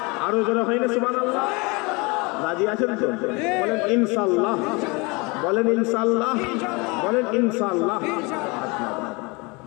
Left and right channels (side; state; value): right; quieter; 27.3 dB